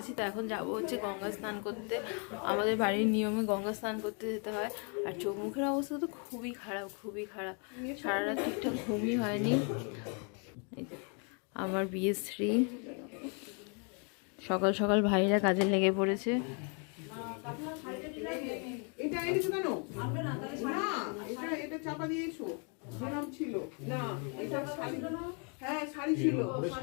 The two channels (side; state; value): right; quieter; 38.0 dB